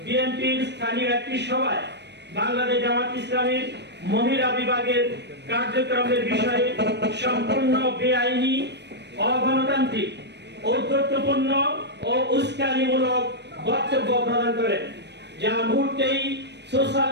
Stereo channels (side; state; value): left; late; 0.50 ms